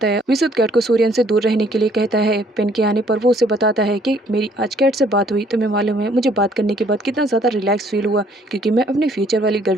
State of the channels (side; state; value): both; normal; correlation 0.62